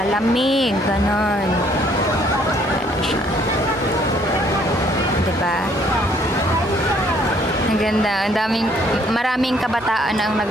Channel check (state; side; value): normal; both; correlation 0.64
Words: ganon. Ano siya. Diba? Ang ganda. Maraming kabataan ang